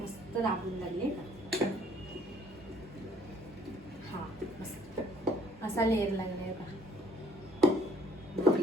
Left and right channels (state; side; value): normal; both; correlation 0.59